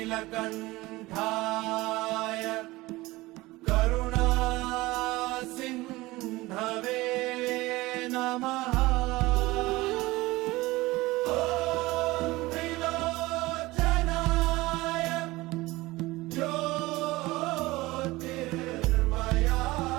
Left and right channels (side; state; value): left; quieter; 20.0 dB